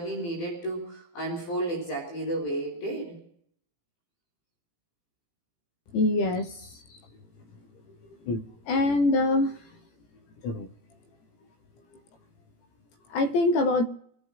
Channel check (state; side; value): late; right; 18 ms